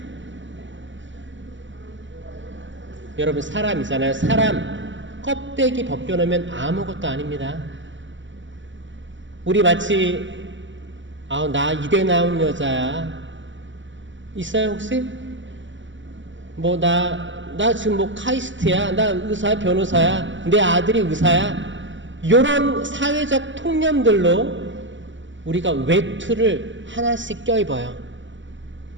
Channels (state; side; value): late; left; 0.54 ms